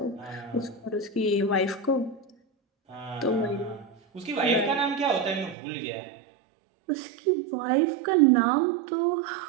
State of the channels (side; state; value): left; drops out; at 5.6 s